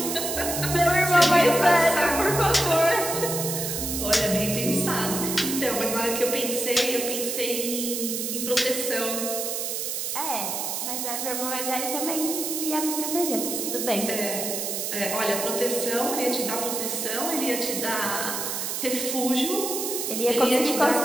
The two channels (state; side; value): noise; right; hiss, 3 dB below the sound